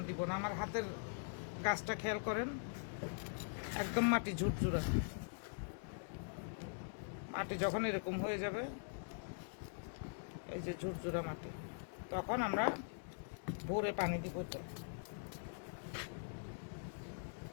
দিব না। আমার হাতের গাছটা খেয়াল করেন, একদম মাটি ঝুরঝুরা। মাটি যখন এরকম হয়ে যাবে, এই যে ঝুরঝুরা মাটি, তখন আমরা ভোরে পানি দিব।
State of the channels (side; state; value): right; silent; digital silence